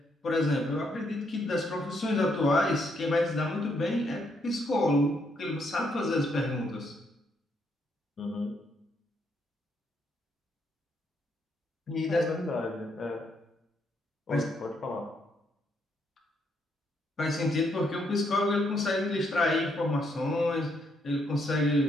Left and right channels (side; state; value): both; normal; correlation 0.75